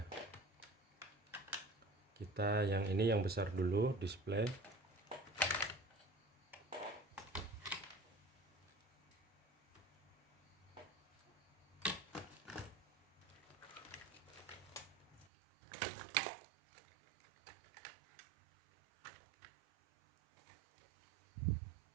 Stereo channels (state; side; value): drops out; left; at 15.2 s